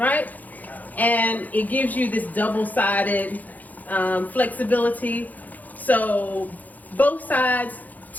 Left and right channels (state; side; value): late; right; 0.081 ms